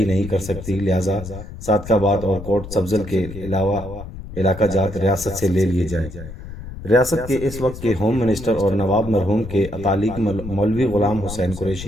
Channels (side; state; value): left; noise; rumble, 12 dB below the sound